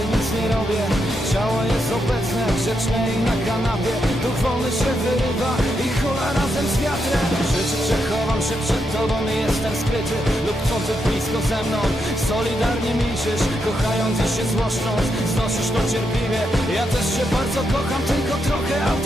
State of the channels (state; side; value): normal; both; correlation 0.82